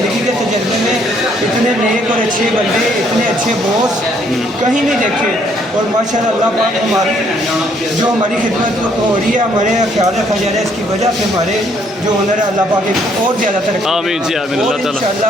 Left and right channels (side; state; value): both; normal; correlation 0.67